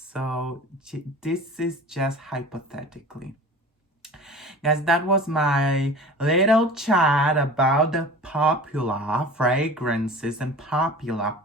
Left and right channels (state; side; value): normal; both; correlation 0.39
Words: this is just hypothetically. Guys, that was my little chat about the popular fragrances and popular